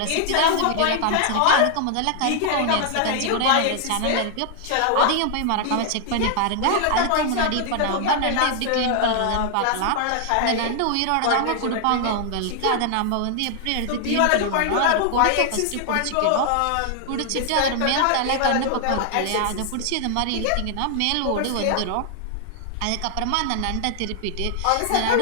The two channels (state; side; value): different; both; correlation 0.00